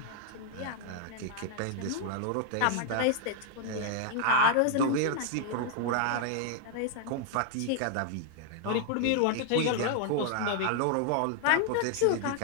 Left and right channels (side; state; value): both; different; correlation 0.00